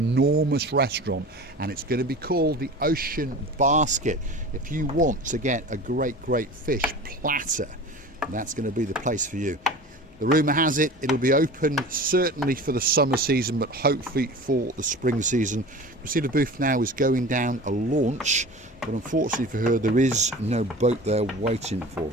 restaurant, and it's going to be called the Ocean Basket. If you want to get a great fish platter, that's going to be the place for you. The rumour has it, it'll be open certainly for the summer season, but hopefully for the spring season. Christina Booth now is going down a launch, but unfortunately for her, there is no boat there waiting for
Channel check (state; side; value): normal; both; correlation 0.37